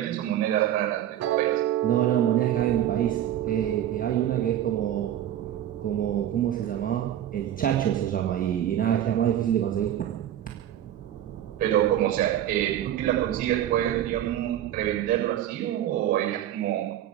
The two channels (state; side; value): quieter; left; 11.5 dB